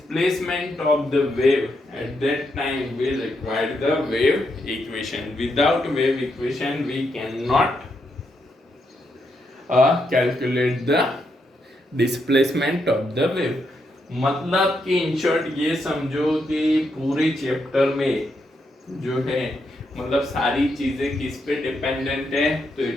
of the wave, at that time we require the wave equation. Without wave equation we cannot calculate the displacement of the wave. मतलब कि इन शॉर्ट ये समझो कि पूरे चैप्टर में जो है मतलब सारी चीजें किस पे डिपेंडेंट है, तो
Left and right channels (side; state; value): both; normal; correlation 0.80